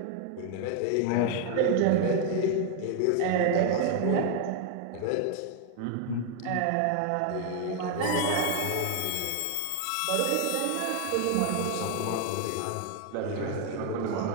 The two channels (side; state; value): both; different; correlation 0.00